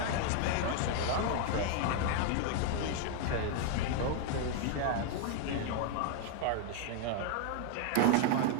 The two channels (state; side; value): different; both; correlation 0.00